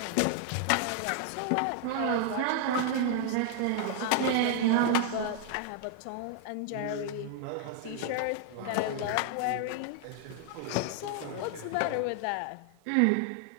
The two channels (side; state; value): both; different; correlation 0.00